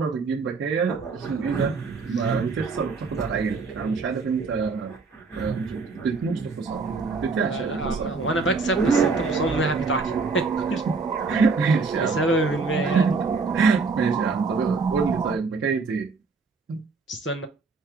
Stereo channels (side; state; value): left; quieter; 4.3 dB